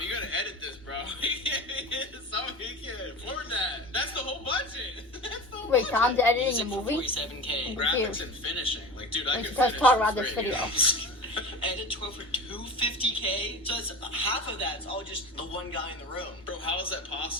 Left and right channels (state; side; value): normal; both; correlation 0.31